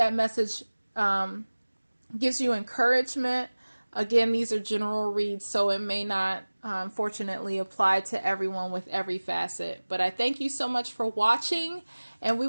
message gives you encouragement. Again, these are general reads, so it may not, fortunately, apply to everyone with every facet. But I thank you so much for watching, and we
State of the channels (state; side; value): inverted; both; correlation -1.00